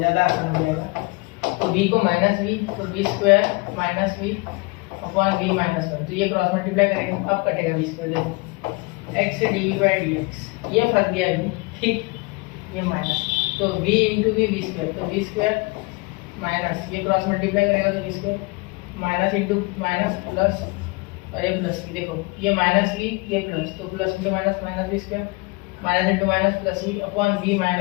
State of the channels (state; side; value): quieter; right; 26.5 dB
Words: आसान हो जाएगा, तो v को माइनस v, तो v square minus v upon v minus one, तो ये क्रॉस मल्टीप्लाई करेंगे, अब कटेगा v स्क्वायर, देखो x dv बाई dx, ये फंस गया v, ठीक, ये माइनस, तो v इंटू वी स्क्वायर, तो v स्क्वायर माइनस, ये क्रॉस मल्टीप्लाई करेगा तो v square minus into minus plus, और ये प्लस वी, देखो ये माइनस वी ये प्लस, तो plus into minus minus v square, minus into minus plus v upon v